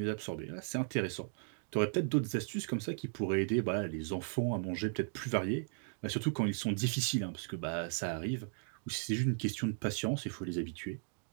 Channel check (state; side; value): silent; left; digital silence